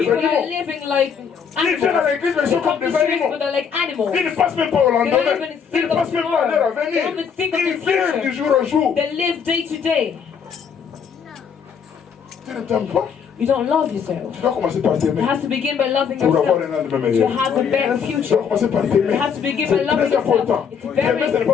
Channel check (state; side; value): quieter; right; 6.9 dB